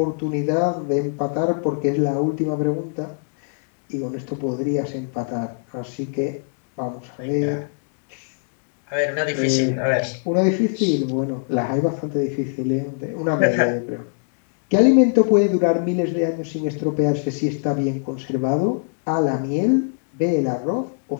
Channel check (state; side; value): silent; right; digital silence